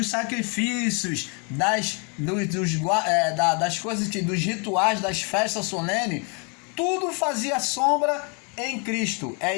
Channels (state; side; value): quieter; right; 35.4 dB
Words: sacrifícios, das coisas, dos rituais, das festas solenes. Tudo fazia sombra em Cristo. É